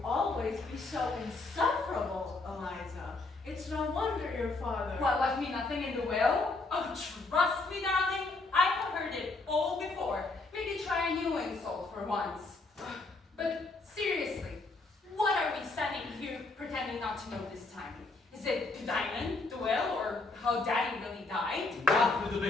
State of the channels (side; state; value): right; quieter; 3.5 dB